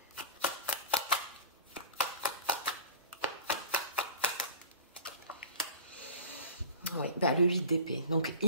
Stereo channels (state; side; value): inverted; both; correlation -0.39